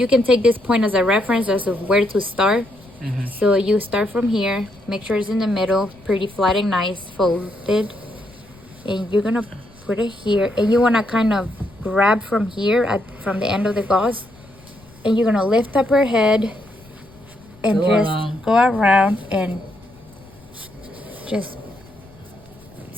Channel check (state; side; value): noise; left; rumble, 25 dB below the sound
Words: can take this point as a reference as of where to start. Mm-hmm. So you start from here. Make sure it's in the middle, pretty flat and nice, folded, and you're gonna put it here. And you wanna kind of grab from here from the end of the gauze, and you're gonna lift up her head and go around and just